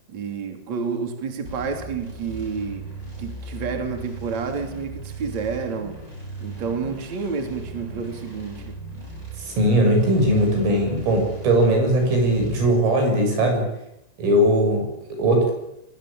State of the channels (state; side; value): late; left; 1.9 ms